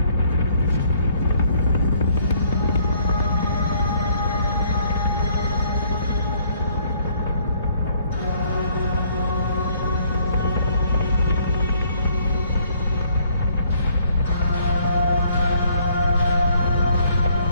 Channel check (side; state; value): both; inverted; correlation -0.64